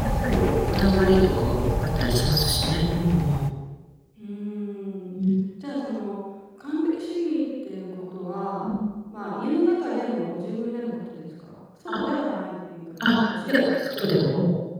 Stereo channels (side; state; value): both; identical; correlation 1.00